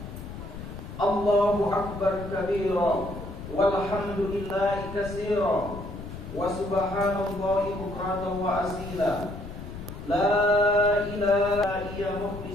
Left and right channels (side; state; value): left; noise; rumble, 11 dB below the sound